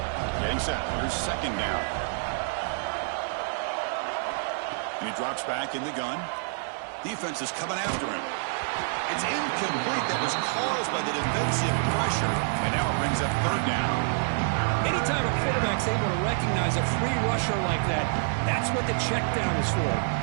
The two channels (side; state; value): left; silent; 60 dB below the other